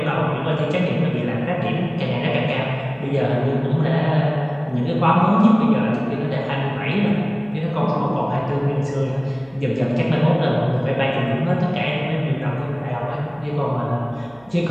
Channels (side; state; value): right; noise; hum, 28 dB below the sound